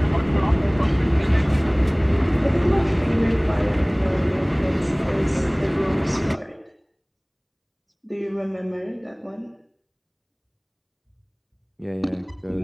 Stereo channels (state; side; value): identical; both; correlation 1.00